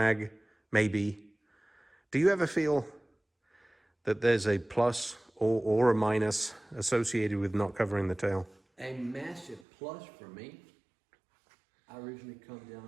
maybe. Do you ever feel that there's a plus or a minus associated with not covering the tail? A massive plus for me. I originally come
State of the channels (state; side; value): drops out; left; at 9.7 s